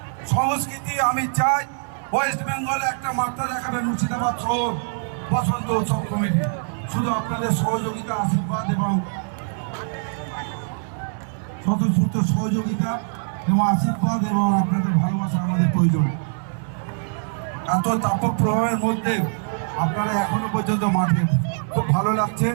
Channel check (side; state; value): left; silent; digital silence